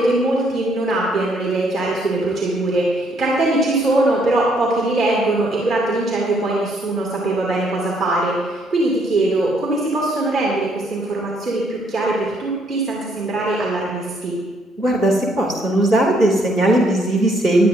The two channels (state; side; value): normal; both; correlation 0.69